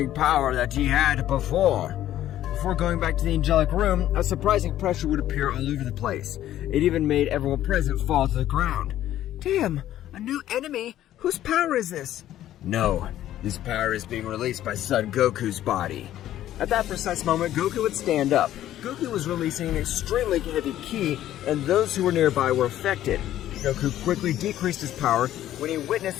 power that he had before. Before going back to the angelic room, a surprising pressure would appear all over the place. It even made everyone present fall to the ground. Damn, a new enemy? Whose power is this? No, this power is being released by Son Goku's body. At that precise moment, Goku would stand up. Goku was releasing an extremely heavy ki, and those who were nearby were affected. Goku quickly decreased his power when he witnessed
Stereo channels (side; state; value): right; quieter; 12.7 dB